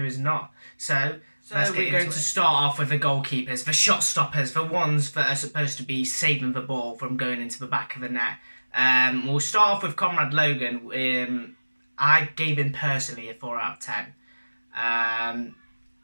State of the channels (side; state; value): both; inverted; correlation -1.00